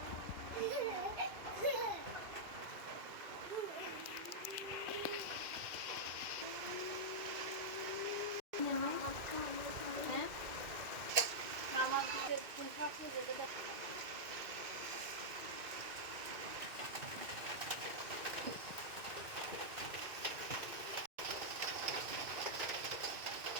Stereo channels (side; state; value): left; late; 2.4 ms